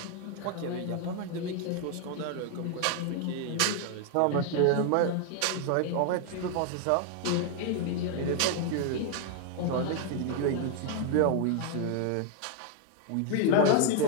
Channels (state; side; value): different; both; correlation 0.00